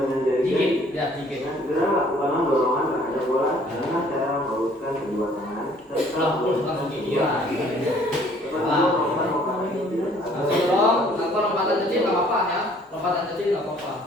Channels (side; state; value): both; normal; correlation 0.58